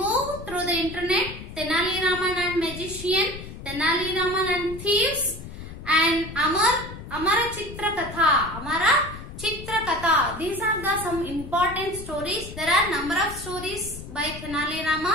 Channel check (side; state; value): left; noise; rumble, 12 dB below the sound